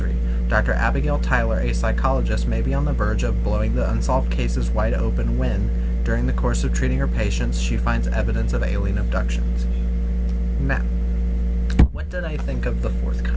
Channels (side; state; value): both; identical; correlation 1.00